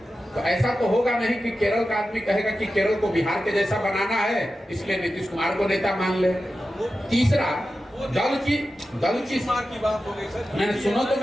तो ऐसा तो होगा नहीं कि केरल का आदमी कहेगा कि केरल को बिहार के जैसा बनाना है इसलिए नीतीश कुमार को नेता मान ले। तीसरा, दल की बात हो गई सर। मैंने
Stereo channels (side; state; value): both; normal; correlation 0.92